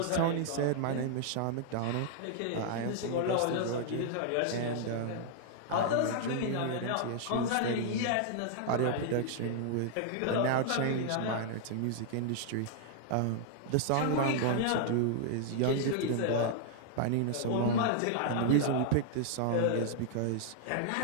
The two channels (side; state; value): both; different; correlation -0.01